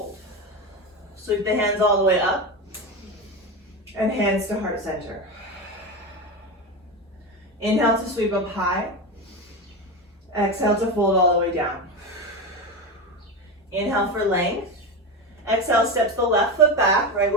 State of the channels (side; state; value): both; normal; correlation 0.19